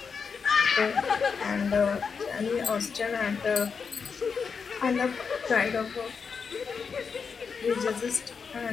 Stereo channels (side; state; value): right; quieter; 5.8 dB